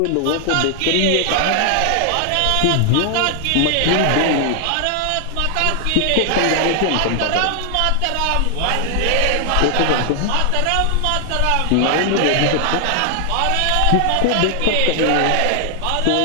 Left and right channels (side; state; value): both; different; correlation 0.00